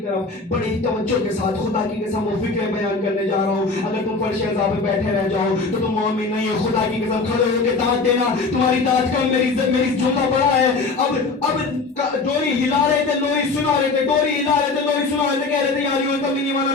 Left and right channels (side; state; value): right; quieter; 4.0 dB